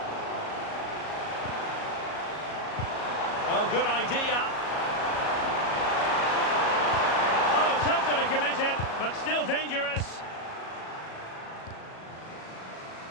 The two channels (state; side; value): late; right; 37 ms